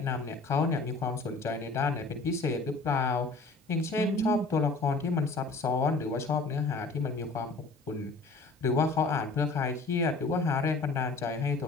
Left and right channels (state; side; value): quieter; right; 3.6 dB